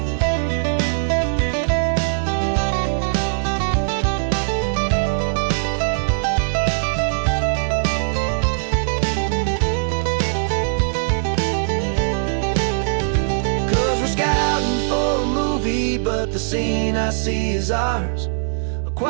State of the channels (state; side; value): silent; left; digital silence